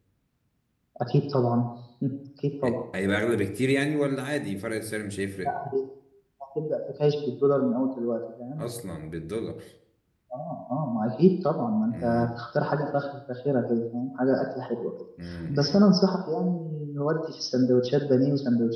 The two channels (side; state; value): both; identical; correlation 1.00